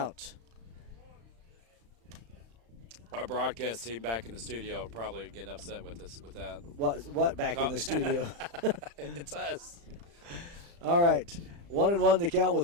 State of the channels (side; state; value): left; late; 35 ms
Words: Our broadcast team back in the studio probably getting upset with us with that. What back in the studio? It's us. All right. 1-1 the count with